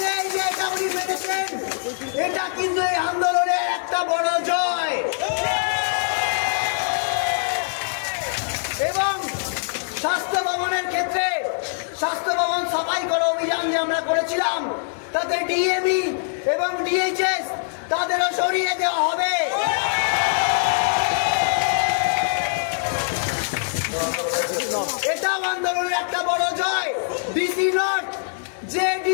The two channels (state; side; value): silent; right; 63 dB below the other